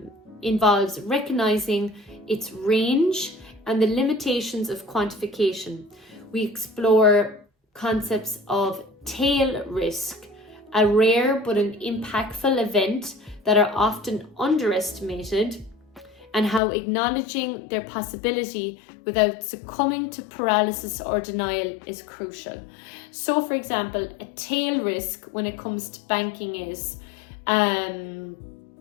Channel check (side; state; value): right; drops out; at 16.6 s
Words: involves recognizing its range and the limitations of quantification. We explore concepts of tail risk, a rare but an impactful event that are often underestimated, and how acknowledging their possibility without succumbing to paralysis or denial is crucial. So, for example, a tail risk when it comes to banking is, I